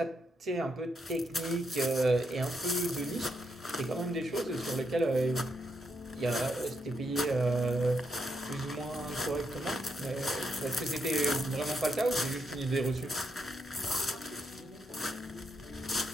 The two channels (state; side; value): normal; both; correlation 0.80